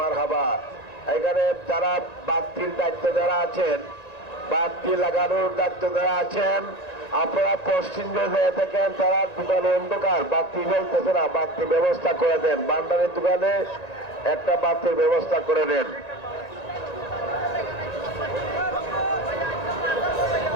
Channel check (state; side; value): late; right; 1.9 ms